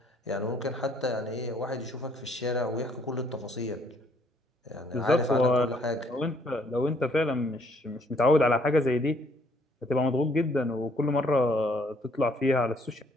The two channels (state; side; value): normal; both; correlation 0.65